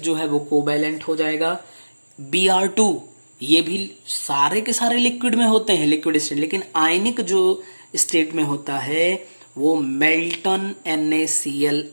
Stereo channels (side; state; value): both; inverted; correlation -1.00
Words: जो है वो कोवैलेंट हो जाएगा। Br2 ये भी सारे के सारे लिक्विड में होते हैं, लिक्विड स्टेट, लेकिन आयनिक जो स्टेट में होता है वो मेल्टन NaCl